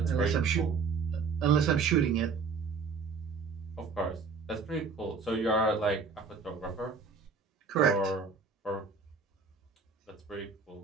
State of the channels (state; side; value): quieter; left; 5.0 dB